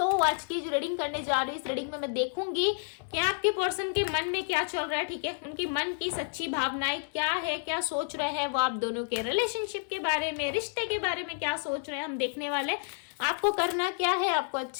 आज की जो रीडिंग करने जा रही हूँ, इस रीडिंग में मैं देखूंगी कि आपके पर्सन के मन में क्या चल रहा है। ठीक है, उनकी मन की सच्ची भावनाएं क्या है, क्या सोच रहे हैं वो आप दोनों के रिलेशनशिप के बारे में, रिश्ते के बारे में क्या सोच रहे हैं, हम देखने वाले। आपको करना क्या है, आपको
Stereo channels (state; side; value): silent; right; digital silence